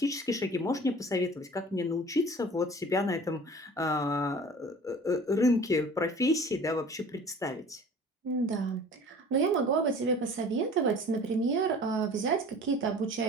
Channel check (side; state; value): both; normal; correlation 0.44